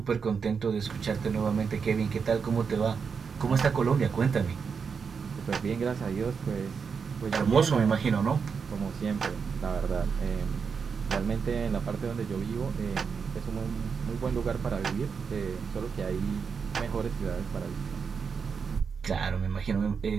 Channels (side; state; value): left; quieter; 5.9 dB